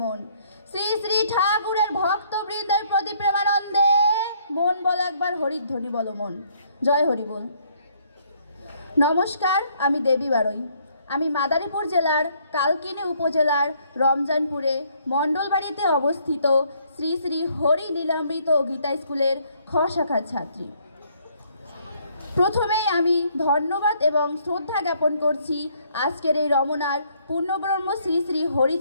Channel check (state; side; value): inverted; both; correlation -0.66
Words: মন। শ্রী শ্রী ঠাকুরের ভক্তবৃন্দের প্রতি প্রেমানন্দে মন বল একবার হরিধ্বনি বল মন। জয় হরি বল। নমস্কার, আমি দেবী বারই। আমি মাদারীপুর জেলার কালকিনি উপজেলার রমজানপুরে মণ্ডলবাড়িতে অবস্থিত শ্রী শ্রী হরি লীলামৃত গীতা স্কুলের খ শাখার ছাত্রী। প্রথমেই আমি ধন্যবাদ এবং শ্রদ্ধা জ্ঞাপন করছি আজকের এই রমনার পূর্ণব্রহ্ম শ্রী শ্রী